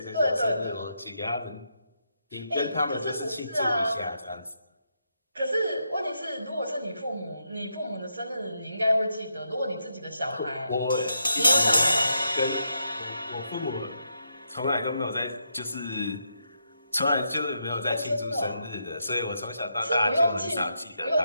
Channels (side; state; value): both; inverted; correlation -0.82